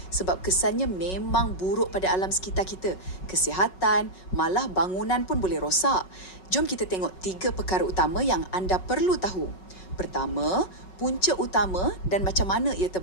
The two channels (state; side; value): late; right; 5.4 ms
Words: sebab kesannya memang buruk pada alam sekitar kita. Kesihatan, malah bangunan pun boleh rosak. Jom kita tengok 3 perkara utama yang anda perlu tahu. Pertama, punca utama dan macam mana ia